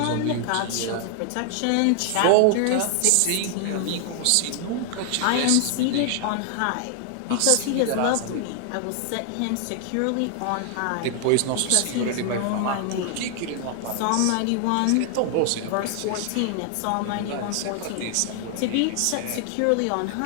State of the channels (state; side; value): different; both; correlation 0.00